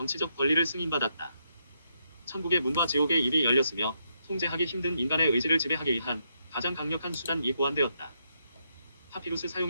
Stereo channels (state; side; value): inverted; both; correlation -0.79